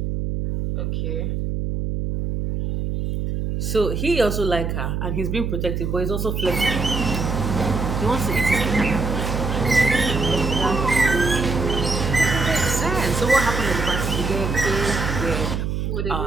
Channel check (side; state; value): right; noise; hum, 2 dB below the sound